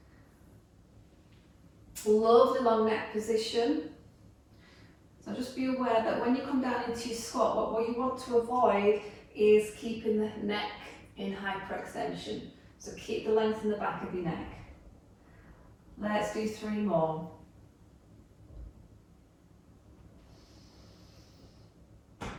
Lovely long neck position. So just be aware that when you come down into your squat, what you want to avoid is keeping the neck in hyperextension. So keep the length in the back of your neck. Let's do 3 more.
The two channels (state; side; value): identical; both; correlation 1.00